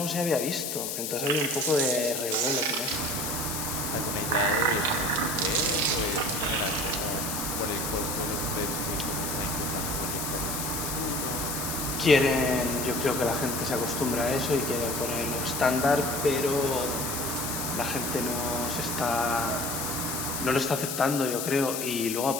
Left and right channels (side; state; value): left; noise; hiss, 3 dB below the sound